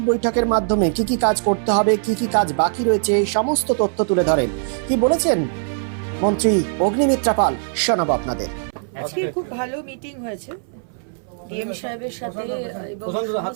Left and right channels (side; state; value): left; silent; 59 dB below the other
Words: বৈঠকের মাধ্যমে কি কাজ করতে হবে, কি কাজ বাকি রয়েছে, সমস্ত তথ্য তুলে ধরেন। কি বলেছেন মন্ত্রী অগ্নিমিত্রা পাল, শোনাবো আপনাদের। আজকে খুব ভালো মিটিং হয়েছে ডিএম সাহেবের সাথে এবং